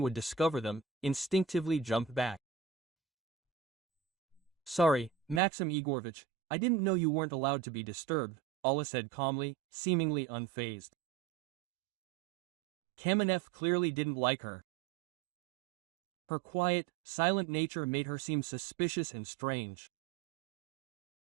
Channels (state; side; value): drops out; left; at 5.4 s